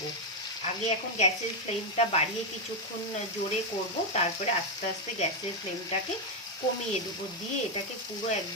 আগে এখন গ্যাসের ফ্লেমটা বাড়িয়ে কিছুক্ষণ জোরে করব, তারপরে আস্তে আস্তে গ্যাসের ফ্লেমটাকে কমিয়ে দেবো। দিয়ে এটাকে পুরো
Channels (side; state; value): both; normal; correlation 0.03